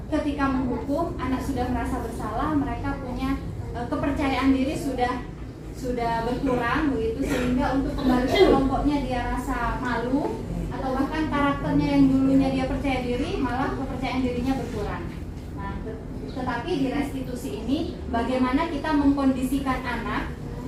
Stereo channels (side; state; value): both; identical; correlation 1.00